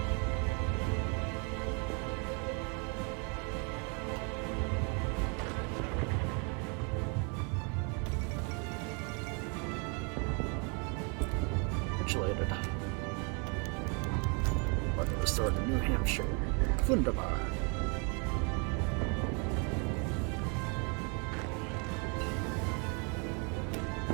Congratulated. Weapon restored to New Hampshire. Wunderbar.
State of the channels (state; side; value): quieter; left; 35.0 dB